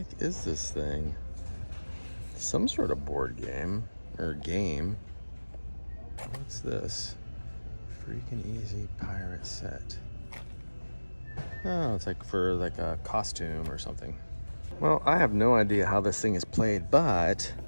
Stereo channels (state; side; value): inverted; both; correlation -1.00